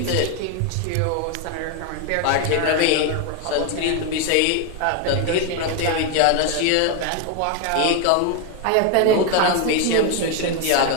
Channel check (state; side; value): different; both; correlation 0.01